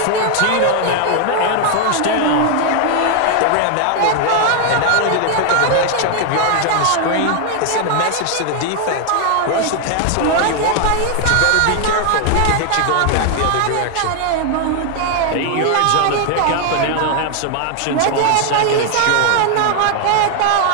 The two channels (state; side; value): different; both; correlation 0.00